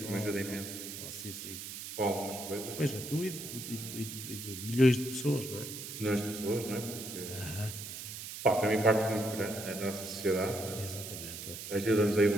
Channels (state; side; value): noise; right; hiss, 9 dB below the sound